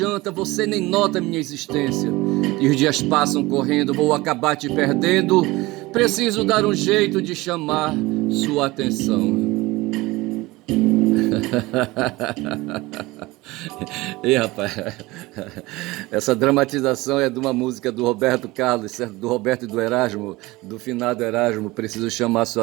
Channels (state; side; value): quieter; left; 20.7 dB